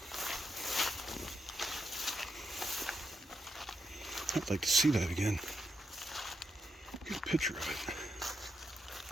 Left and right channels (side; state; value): both; normal; correlation 0.83